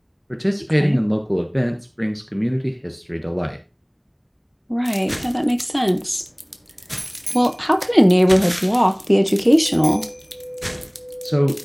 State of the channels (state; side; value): identical; both; correlation 1.00